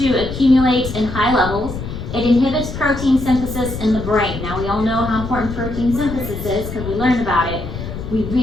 accumulate in high levels. It inhibits protein synthesis in the brain. Now, we all know how important protein synthesis is because we learned about it. We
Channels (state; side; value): noise; left; rumble, 8 dB below the sound